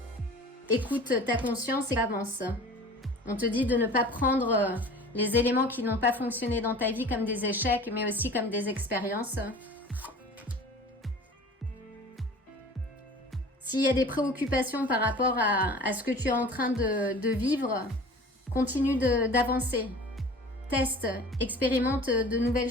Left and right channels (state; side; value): normal; both; correlation 0.42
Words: Écoute ta conscience et avance. On te dit de ne pas prendre les éléments qui n'ont pas fonctionné dans ta vie comme des échecs, mais aussi comme des expériences. S'il y a des préoccupations par rapport à ce que tu es en train de vivre, continue d'avancer. Teste, expérimente de nouvelles